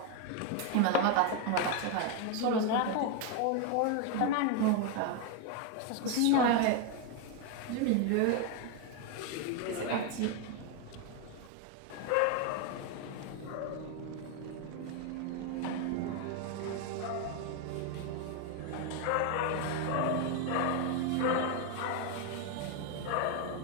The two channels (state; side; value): different; both; correlation 0.01